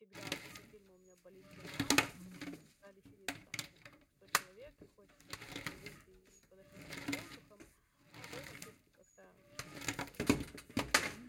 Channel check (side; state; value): both; identical; correlation 1.00